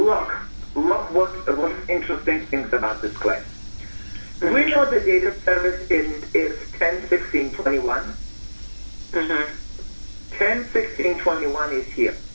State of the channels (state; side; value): inverted; both; correlation -1.00